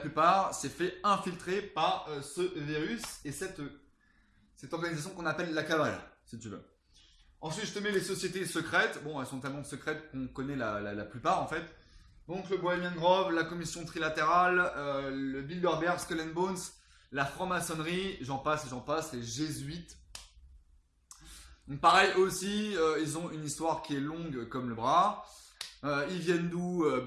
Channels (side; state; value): both; identical; correlation 1.00